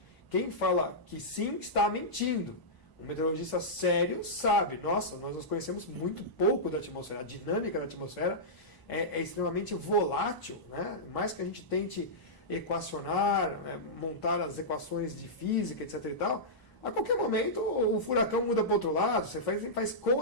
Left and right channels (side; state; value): right; late; 1.0 ms